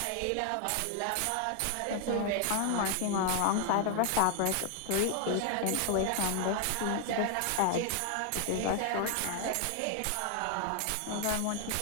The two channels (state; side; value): different; both; correlation 0.00